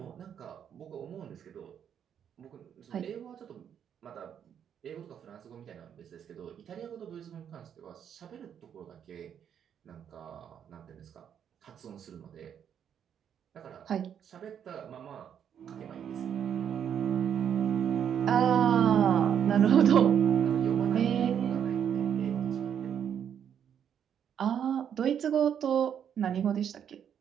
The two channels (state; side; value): quieter; left; 8.6 dB